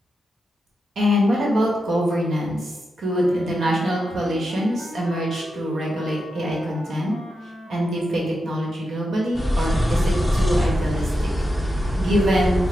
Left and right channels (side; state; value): both; normal; correlation 0.87